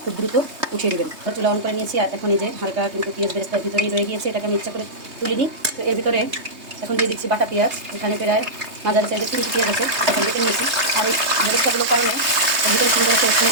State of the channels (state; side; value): late; left; 3.2 ms